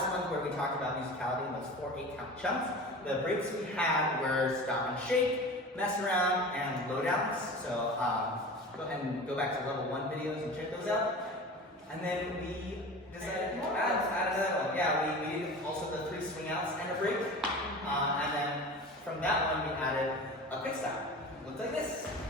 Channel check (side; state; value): both; normal; correlation 0.35